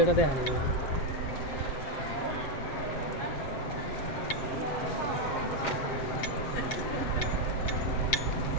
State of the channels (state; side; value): late; right; 7.3 ms